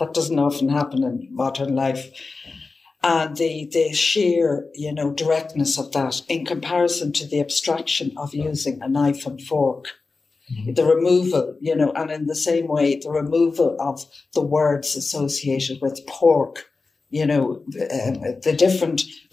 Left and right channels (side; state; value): right; quieter; 4.0 dB